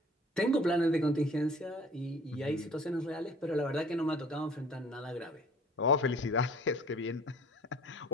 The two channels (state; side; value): normal; both; correlation 0.50